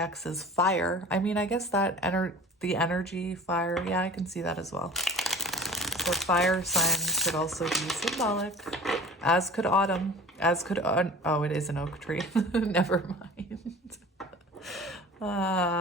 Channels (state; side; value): normal; both; correlation 0.41